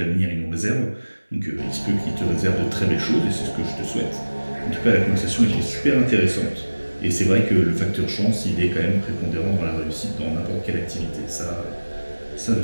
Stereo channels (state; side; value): inverted; both; correlation -1.00